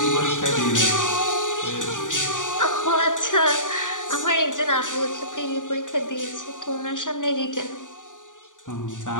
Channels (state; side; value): late; right; 0.87 ms